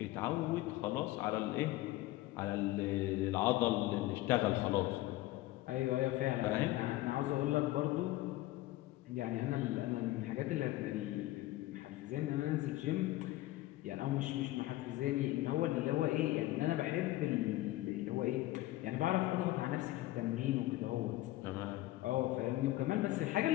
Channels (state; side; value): quieter; right; 17.1 dB